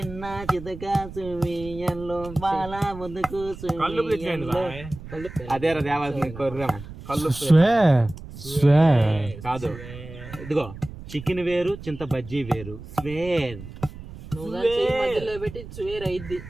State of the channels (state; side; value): noise; right; rumble, 14 dB below the sound